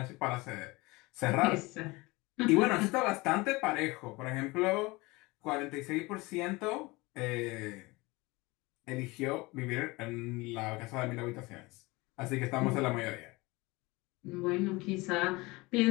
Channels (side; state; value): right; quieter; 23.1 dB